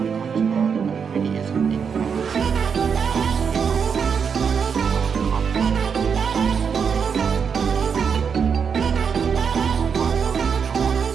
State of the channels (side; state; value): left; quieter; 6.5 dB